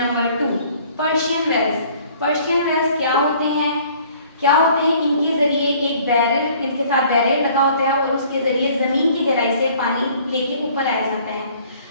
number 2 Persian wells. Persian wells क्या होते हैं? इनके जरिए एक बैरल, इनके साथ बैरल लगा होता है और उसके जरिए जमीन की गहराई से पानी लेके ऊपर आया जाता है।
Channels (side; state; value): both; inverted; correlation -0.55